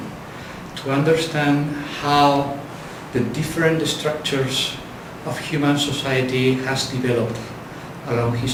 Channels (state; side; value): identical; both; correlation 1.00